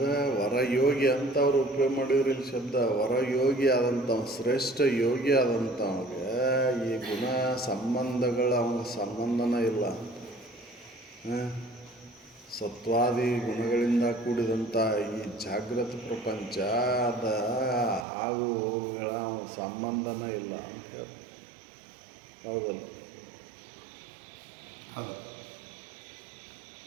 ವರಯೋಗಿ ಅಂತ ಅವ್ರು ಉಪಯೋಗ ಮಾಡಿದ್ರು ಇಲ್ಲಿ ಶಬ್ದ. ವರಯೋಗಿ ಆದಂಥ ಶ್ರೇಷ್ಠ ಯೋಗಿ ಆದಂಥವ್ಗೆ ಈ ಗುಣ ಸಂಬಂಧಗಳ ಅವನಿಗೆ ಸಂಬಂಧನೇ ಇಲ್ಲ. ಸತ್ವಾದಿ ಗುಣಗಳಿಂದ ಕೂಡಿದಂಥ ಈ ಜಾಗೃತ ಪ್ರಪಂಚ ಅದ ಆಗು ಹೋಗುಗಳ ಅವನ ಸಂಬಂಧನೇ ಇಲ್ಲ ಅಂತ ಹೇಳಿ. ಹೌದಲ್ಲ?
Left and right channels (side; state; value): left; drops out; at 18.1 s